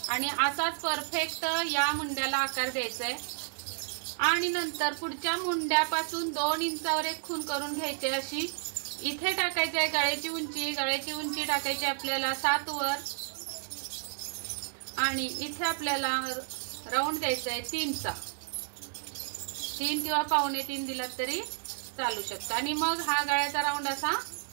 आणि असाच परफेक्ट या मुंड्याला आकार द्यायचा आहे। आणि नंतर पुढच्या मुंड्यापासून 2 इंचावर एक खून करून घ्यायची अशी। इथे टाकायची आहे गळ्याची उंची टाकायची आपल्याला 7 वर आणि इथे आपल्याला राऊंड द्यायचा आहे 3चा, 3 किंवा 2.25 दिला तरी चालू शकतो। आणि मग हा गळ्याचा राऊंड असा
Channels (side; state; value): left; silent; digital silence